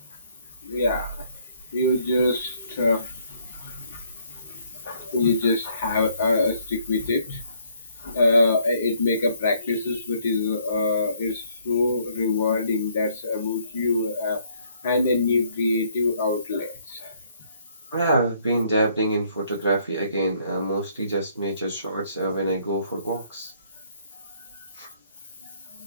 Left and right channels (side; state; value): both; inverted; correlation -0.66